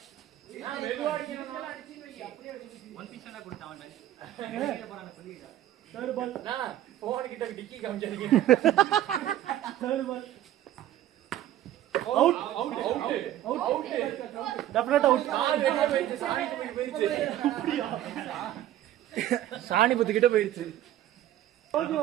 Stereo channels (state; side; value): quieter; left; 12.9 dB